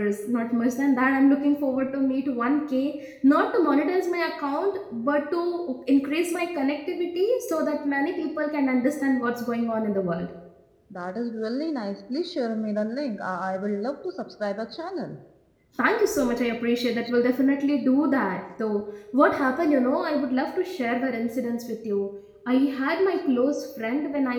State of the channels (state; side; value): identical; both; correlation 1.00